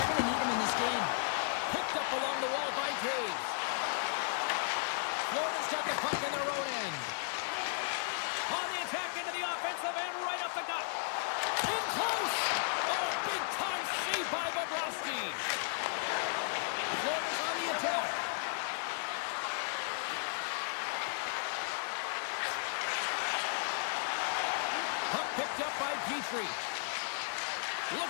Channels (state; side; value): silent; right; 54 dB below the other